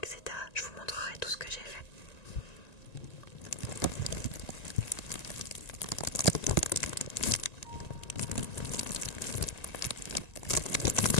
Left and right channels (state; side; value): late; right; 1.9 ms